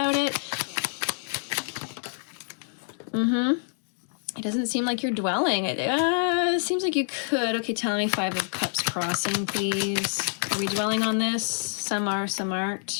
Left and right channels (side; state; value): right; silent; digital silence